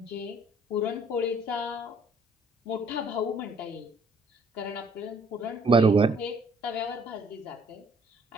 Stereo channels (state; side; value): normal; both; correlation 0.61